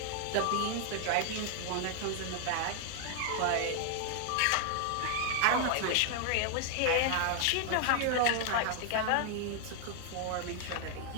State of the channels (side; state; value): both; different; correlation 0.00